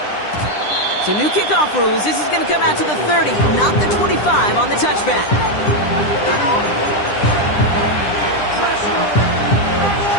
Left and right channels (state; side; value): late; right; 9.9 ms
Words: So new kickoff rules. This is going to come out to the 30, not the 25 on the touchback.